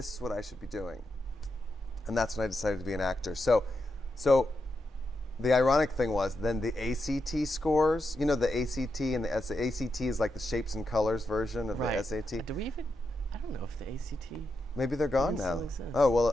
is what I should be doing. And that's when I decided to be an actor. So the ironic thing was then the ACT scores, the ACT and the ACT is like the shapes and colors version of the SAT. I don't know if the ACT. Maybe they're gone now. Oh, well,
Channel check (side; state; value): both; normal; correlation 0.85